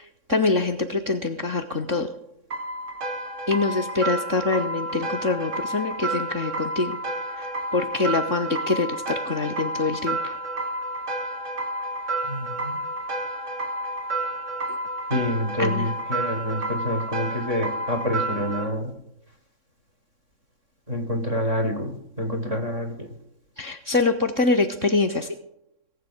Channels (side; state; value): left; late; 3.6 ms